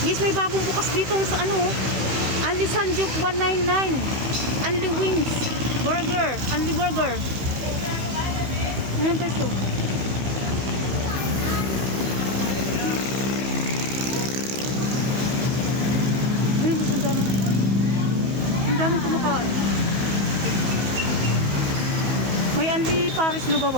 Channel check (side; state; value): left; late; 14 ms